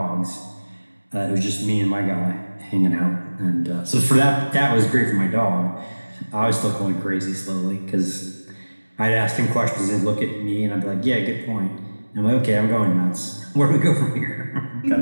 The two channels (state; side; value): inverted; both; correlation -1.00